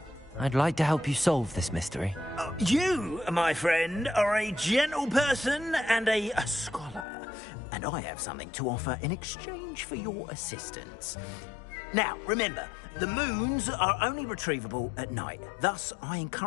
I'd like to help you solve this mystery. You, my friend, are a gentle person and a scholar, and I have something to offer in exchange for your assistance. Now, remember, the moons are only retrievable at night. Thus, I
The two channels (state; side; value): drops out; right; at 7.1 s